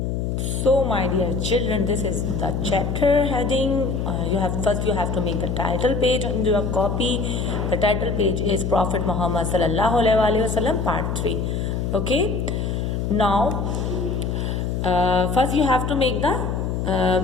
So my dear children, this is the chapter heading. You have to make the title page on your copy. The title page is Prophet Muhammad sallallahu alaihi wasallam part 3. Okay. Now first you have to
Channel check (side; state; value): left; noise; hum, 1 dB below the sound